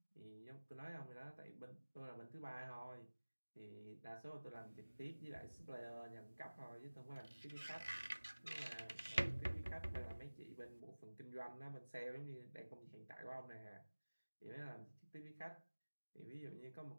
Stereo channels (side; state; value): both; inverted; correlation -1.00